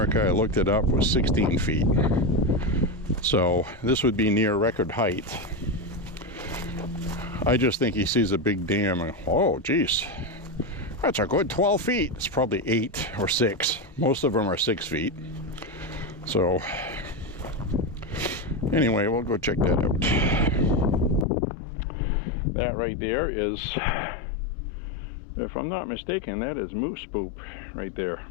I looked it up, was 16 feet. So this would be near record height. I just think he sees a big dam and, oh geez, That's a good 12 feet. It's probably 8 or 6. Most of them are 6 feet. So anyway, we'll go check that out. That right there is, if I'm not mistaken, that is moose poop right there.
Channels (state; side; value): drops out; right; at 21.2 s